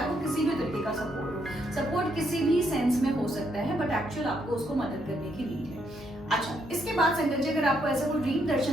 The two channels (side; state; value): both; normal; correlation 0.75